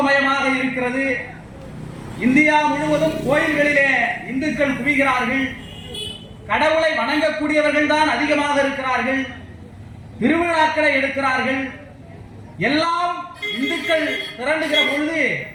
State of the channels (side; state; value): both; identical; correlation 1.00